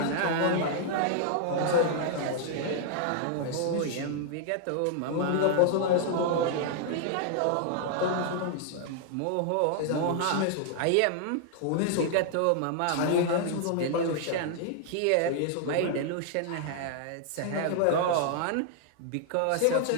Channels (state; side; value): different; both; correlation 0.00